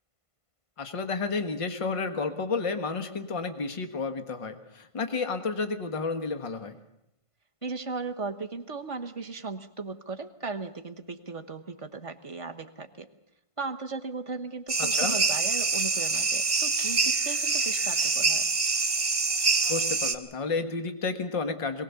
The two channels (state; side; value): late; right; 1.5 ms